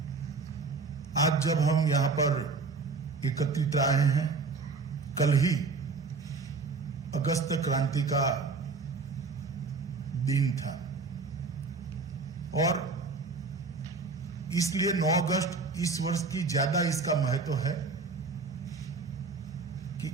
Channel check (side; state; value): left; quieter; 4.3 dB